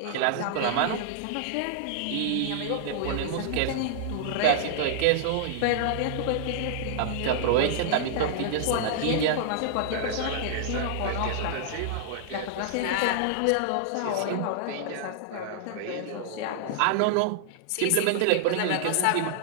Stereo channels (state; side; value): different; both; correlation -0.01